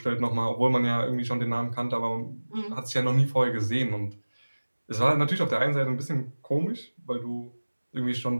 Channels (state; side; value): inverted; both; correlation -1.00